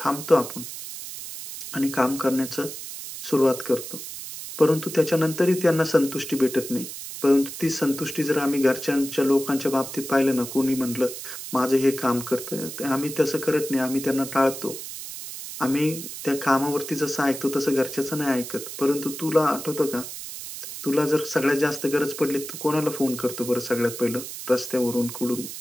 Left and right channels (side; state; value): right; noise; hiss, 10 dB below the sound